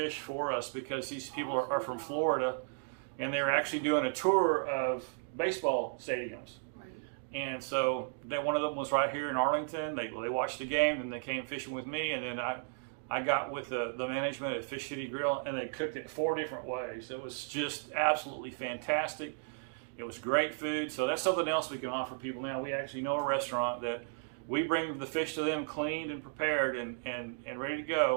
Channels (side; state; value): left; silent; digital silence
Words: for us, because these people are from Florida, and they're actually doing a tour of baseball stadiums. Right. And so one of them was right here in Arlington. They watched the game, and they came fishing with me, and then I got with the management at Fish City Grill, and they cooked it 4 different ways. It was just absolutely fantastic. It was great food. So that's something else we can offer people now. We actually know a restaurant that we bring the fish to them cleaned and prepared and ready to